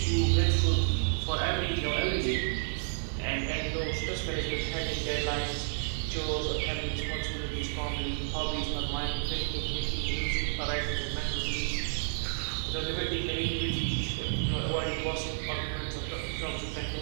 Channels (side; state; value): left; silent; digital silence